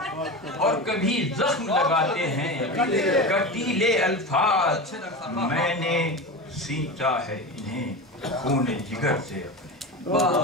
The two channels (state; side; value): normal; both; correlation 0.25